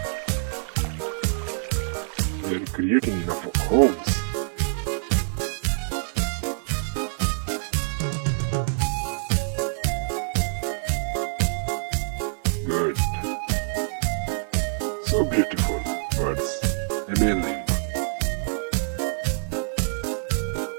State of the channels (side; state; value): left; silent; digital silence